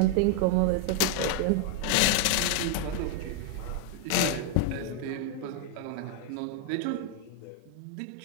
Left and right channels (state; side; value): different; both; correlation 0.00